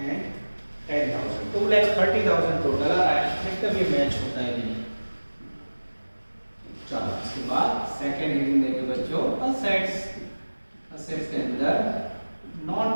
10,000, 2,30,000 टोटल आ रहा है। देखते हैं मैच होता है कि नहीं। चलो उसके बाद सेकंड हेडिंग देंगे बच्चों असेट्स। असेट्स के अंदर नॉन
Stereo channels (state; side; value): inverted; both; correlation -1.00